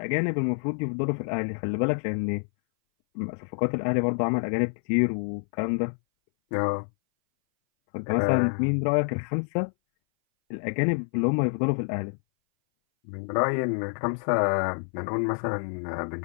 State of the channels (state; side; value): silent; right; 58 dB below the other